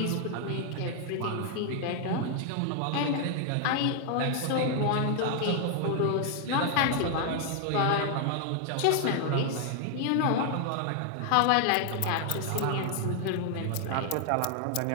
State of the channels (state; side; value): different; both; correlation 0.00